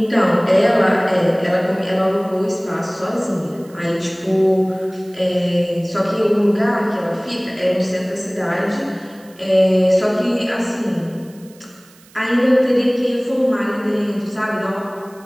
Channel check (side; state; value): right; noise; hiss, 27 dB below the sound